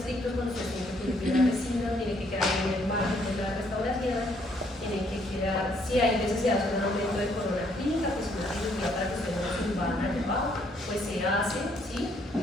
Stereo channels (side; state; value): both; normal; correlation 0.68